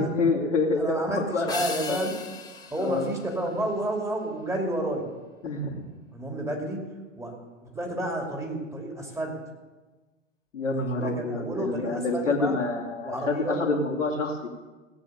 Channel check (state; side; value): normal; both; correlation 0.41